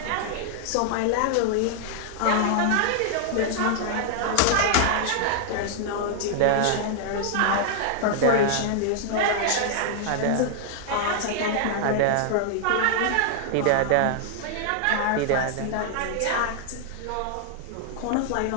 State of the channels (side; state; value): both; different; correlation -0.01